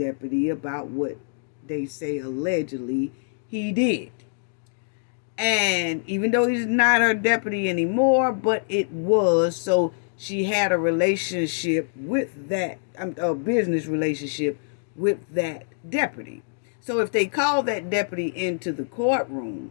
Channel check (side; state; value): right; silent; digital silence